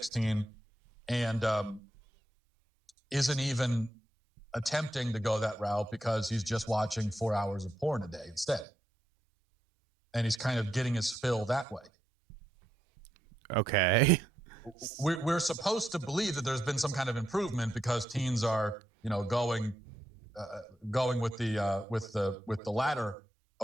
and isn't even attempting to go that route because he's just watching 4 hours of porn a day instead. And he's kind of getting his fill that way. Okay. We're supposed to believe that there's been some kind of improvement because teens are, going with the latter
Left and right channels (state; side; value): normal; both; correlation 0.82